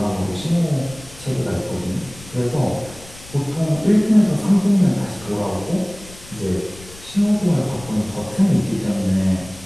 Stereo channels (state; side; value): noise; left; rumble, 20 dB below the sound